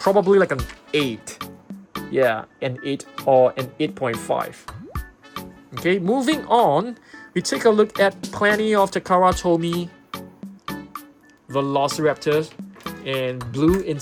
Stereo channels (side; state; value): both; identical; correlation 1.00